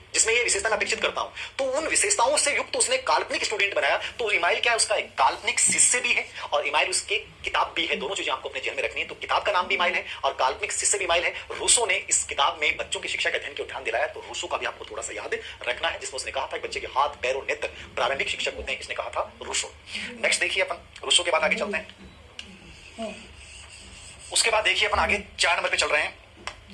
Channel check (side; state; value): both; identical; correlation 1.00